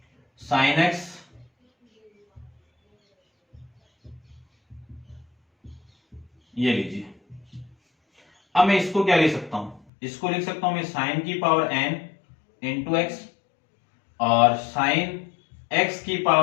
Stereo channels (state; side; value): drops out; right; at 9.8 s